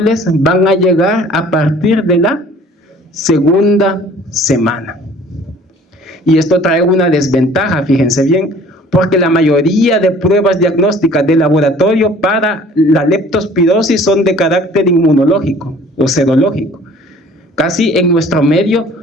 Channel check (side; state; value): both; normal; correlation 0.51